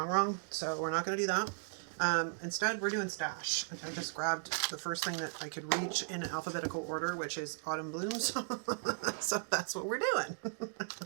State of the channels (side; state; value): left; silent; digital silence